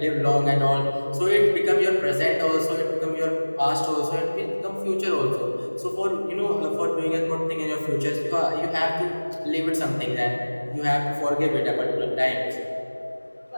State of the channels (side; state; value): both; inverted; correlation -1.00